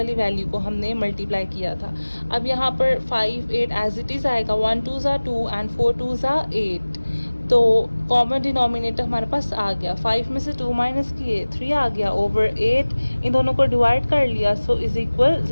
वैल्यू को हमने मल्टीप्लाई किया था। अब यहाँ पर 5 8 एज इट इज़ आएगा, 1 2 ज़ा 2 एंड 4 2 ज़ा 8। तो कॉमन डिनोमिनेटर हमारे पास आ गया। 5 में से 2 माइनस किए, 3 आ गया ओवर 8। इन दोनों को डिवाइड कर लिया, सो इज इक्वल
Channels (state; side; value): inverted; both; correlation -1.00